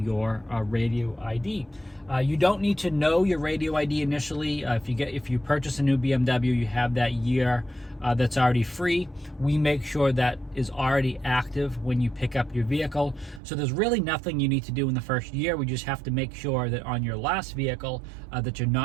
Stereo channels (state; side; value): drops out; left; at 13.4 s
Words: radio ID. You don't need to know your radio ID initially. If you purchase a new BMW, you have that year that's already free. We make sure that is already active when you pick up your vehicle. So there's really nothing you need to do in the first year. We just have to make sure that on your last vehicle that you're